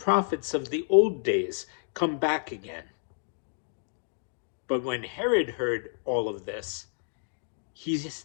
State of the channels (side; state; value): right; silent; digital silence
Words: of the old days come back again. But when Herod heard all of this,